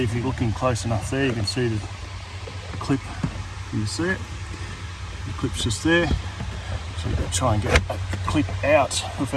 if you're looking close enough there, you can see the clip. Can you see it? The clip's just there. So you've got to try and get a clip out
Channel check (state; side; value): identical; both; correlation 1.00